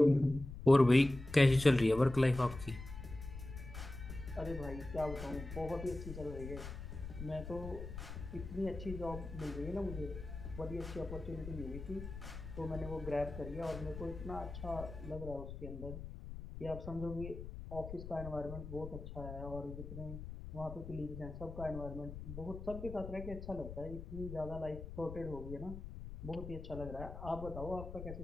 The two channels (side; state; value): left; noise; rumble, 9 dB below the sound